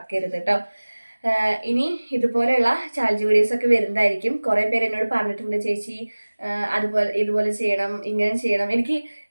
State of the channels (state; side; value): inverted; both; correlation -1.00